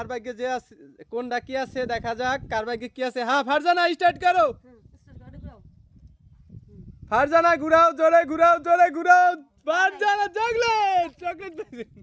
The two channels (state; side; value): identical; both; correlation 1.00